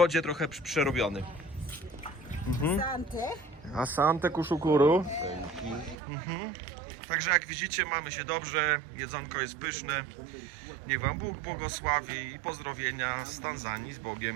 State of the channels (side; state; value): left; drops out; at 6.0 s